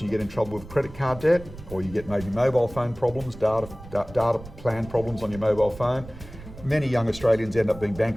and you get in trouble with credit card debt, or you get maybe mobile phone problems, data plan problems on your mobile phone, many young Australians end up being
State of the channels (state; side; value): noise; right; rumble, 16 dB below the sound